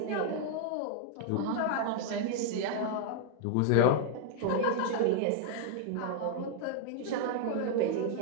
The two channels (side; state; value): both; different; correlation -0.01